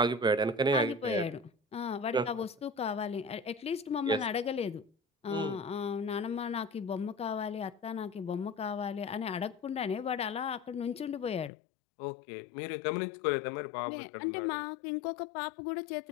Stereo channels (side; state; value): right; drops out; at 11.5 s